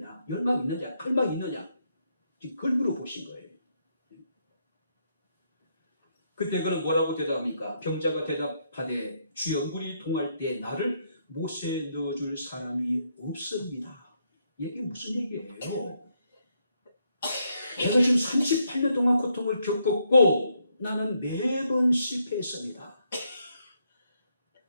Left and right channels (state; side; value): inverted; both; correlation -0.76